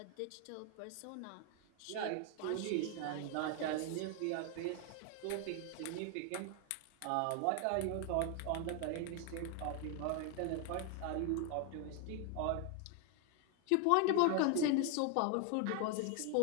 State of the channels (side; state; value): both; different; correlation 0.00